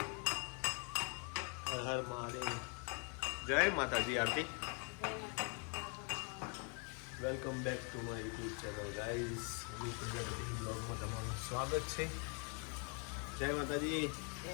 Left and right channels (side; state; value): right; quieter; 38.0 dB